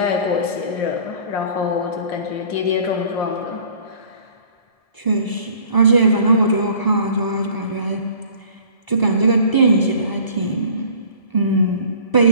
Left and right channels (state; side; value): late; right; 1.7 ms